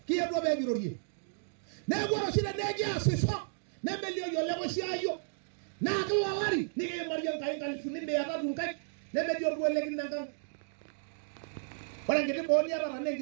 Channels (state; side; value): silent; left; digital silence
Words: kiye do be girorie na goro shine neje asiso na melio yo lego shayo na kalwalari ni ke mariyan kai kan funi be ata dun kai na melio do legi nangan wala ngede bo ni ara ne